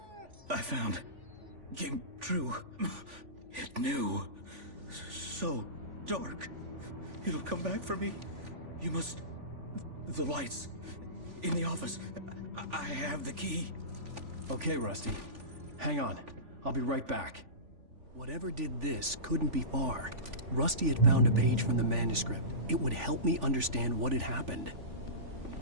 I found. Came true. It knew. So dark. It'll come back for me. You must... The lights. In the office. I have the key. Okay, Rusty. Hang on. I'll be right back. Whatever did this couldn't be far. Rusty had found a page from the manuscript. It would help me understand what had happened.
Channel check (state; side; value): late; left; 3.5 ms